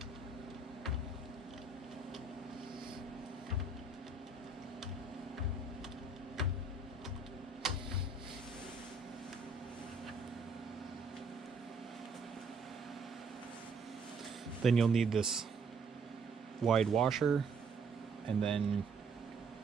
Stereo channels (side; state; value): left; quieter; 3.8 dB